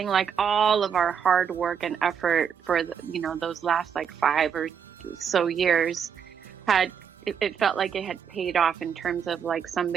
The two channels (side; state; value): left; quieter; 7.5 dB